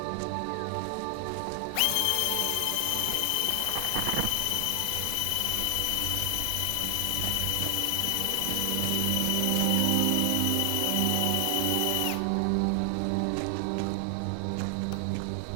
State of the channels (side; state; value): both; different; correlation 0.00